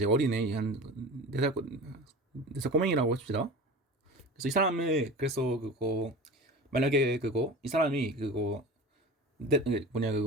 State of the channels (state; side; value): normal; both; correlation 0.34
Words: 어린애 한 4살 꼬맹이라고 합시다. 그래서 이 사람을 그래서 그거 만약에 그거 이 사람이 그거 뭐냐